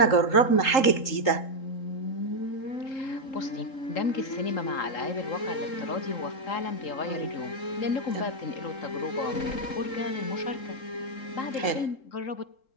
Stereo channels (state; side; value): late; right; 3.8 ms